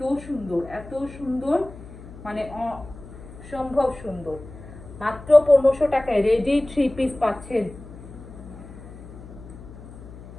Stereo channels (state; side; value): noise; left; hum, 16 dB below the sound